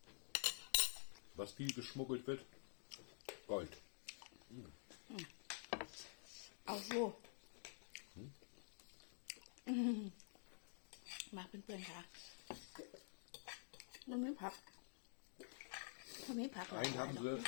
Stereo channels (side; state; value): right; silent; digital silence